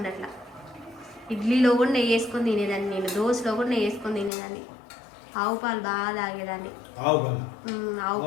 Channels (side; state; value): right; drops out; at 4.3 s